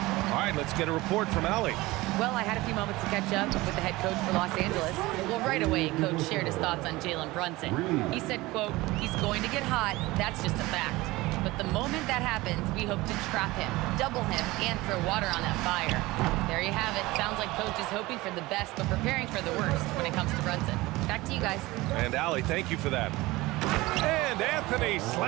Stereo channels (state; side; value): quieter; left; 20.2 dB